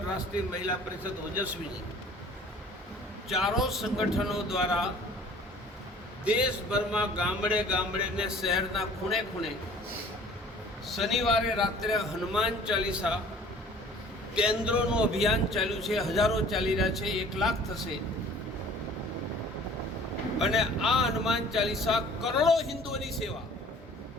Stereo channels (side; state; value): both; normal; correlation 0.50